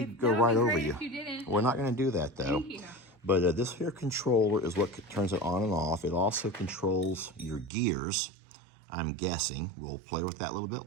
go right over you. If you didn't. We're not going to do that, though. Thank you. But this here controller is what turns it on and off. It also controls your gears, I'm guessing. We'll play with that a little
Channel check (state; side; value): drops out; left; at 7.7 s